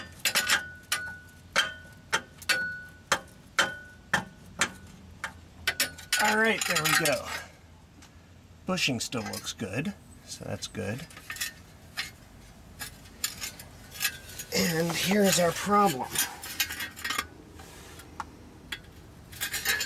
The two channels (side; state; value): both; identical; correlation 1.00